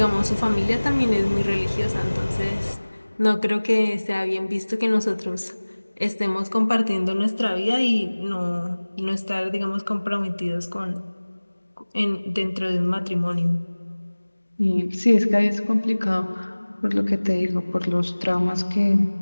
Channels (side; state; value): both; inverted; correlation -1.00